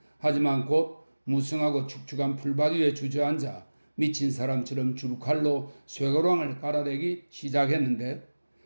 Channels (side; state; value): both; inverted; correlation -1.00